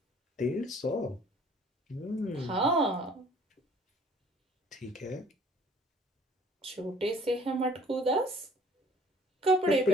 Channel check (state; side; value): normal; both; correlation 0.56